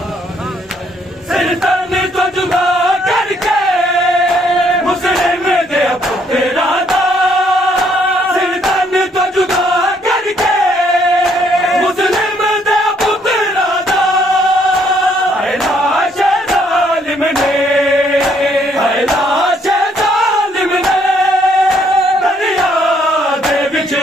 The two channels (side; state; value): both; normal; correlation 0.68